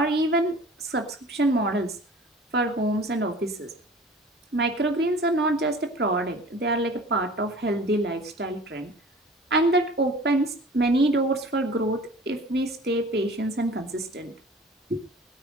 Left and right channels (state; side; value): normal; both; correlation 0.44